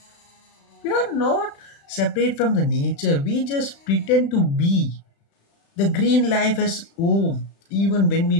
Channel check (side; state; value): right; late; 36 ms